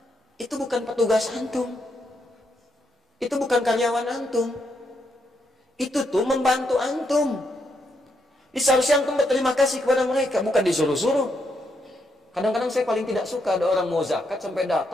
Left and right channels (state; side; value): normal; both; correlation 0.78